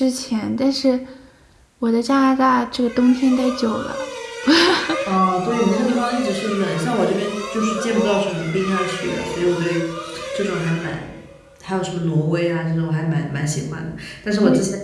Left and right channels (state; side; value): identical; both; correlation 1.00